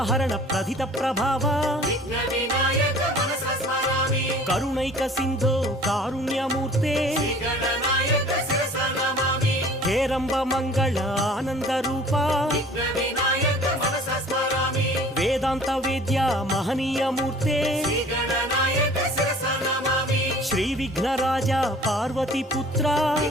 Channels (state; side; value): normal; both; correlation 0.48